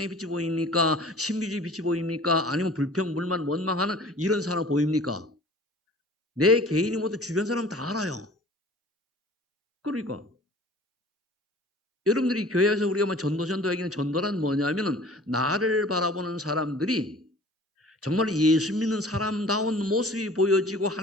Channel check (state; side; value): normal; both; correlation 0.47